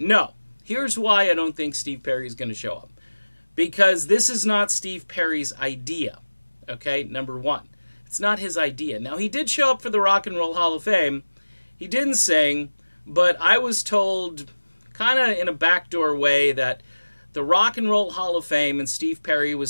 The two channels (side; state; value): both; inverted; correlation -1.00